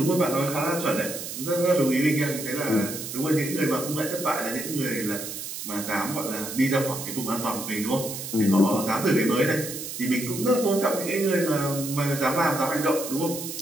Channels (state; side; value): noise; right; hiss, 7 dB below the sound